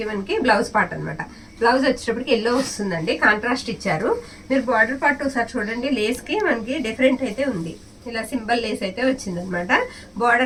మనకి బ్లౌజ్ పార్ట్ అనమాట. బ్లౌజ్ వచ్చేటప్పటికి ఎల్లో వస్తుందండి, కాంట్రాస్ట్ ఇచ్చారు. మీరు బార్డర్ పార్ట్ ఒకసారి చూడండి, లేస్కి మనకి డిఫరెంట్ అయితే ఉంది. ఇలా సింబల్ లేస్ అయితే వచ్చిందనమాట.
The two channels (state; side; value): identical; both; correlation 1.00